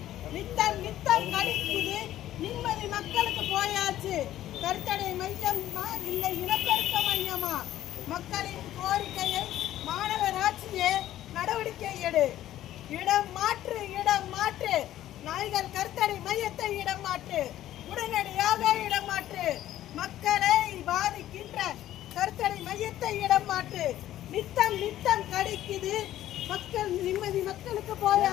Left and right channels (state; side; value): quieter; right; 13.2 dB